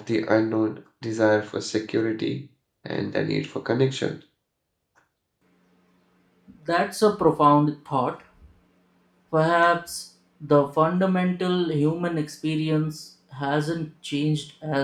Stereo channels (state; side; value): identical; both; correlation 1.00